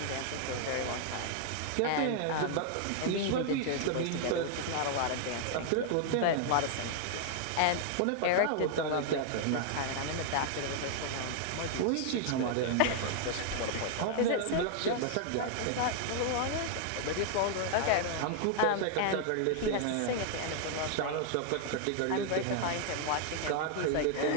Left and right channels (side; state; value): both; different; correlation 0.00